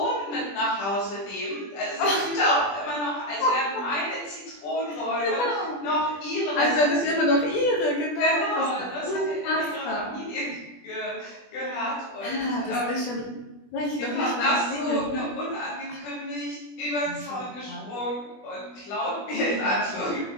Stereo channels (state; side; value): late; right; 20 ms